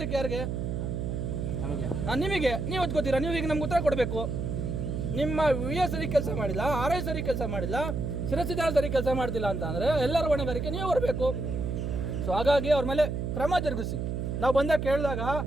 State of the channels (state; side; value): noise; right; hum, 2 dB below the sound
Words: ಯಾರಿಗೆ? ನಿಮಗೆ. ನೀವು ಓದ್ಕೋತೀರಾ, ನೀವು ಈಗ ನಮ್ಗೆ ಉತ್ತರ ಕೊಡಬೇಕು. ನಿಮ್ಮ PS ಸರಿ ಕೆಲಸ ಮಾಡಿಲ್ಲ, RI ಸರಿ ಕೆಲಸ ಮಾಡಿಲ್ಲ, ಶಿರಸಿದಾರ ಸರಿ ಕೆಲಸ ಮಾಡ್ತಿಲ್ಲ ಅಂತ ಅಂದರೆ ಎಲ್ಲರ ಹೊಣೆಗಾರಿಕೆ ನೀವು ಬರಬೇಕು. ಸೊ ಹಾಗಾಗಿ ಅವ್ರ ಮೇಲೆ ಕ್ರಮ ಜರುಗಿಸಿ. ನಾವು ಬಂದಾಗ ಕೇಳಿದಾಗ